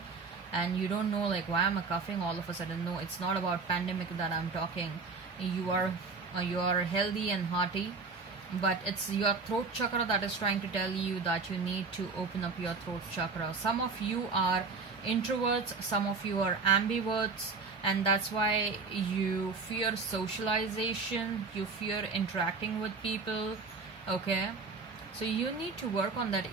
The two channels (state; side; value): quieter; left; 4.5 dB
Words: and you don't know, like, why am I coughing all of a sudden? No, it's not about pandemic that I'm talking. You are healthy and hearty, but it's your throat chakra that is trying to tell you that you need to open up your throat chakra. Some of you are introverts, some of you are ambiverts, and that's why you fear socialization, you fear interacting with people. Okay, so you need to work on that